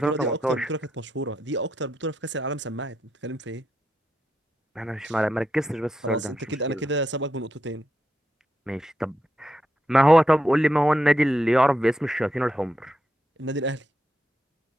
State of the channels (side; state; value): both; normal; correlation 0.83